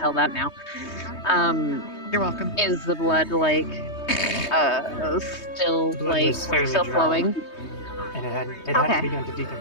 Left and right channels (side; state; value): right; late; 3.2 ms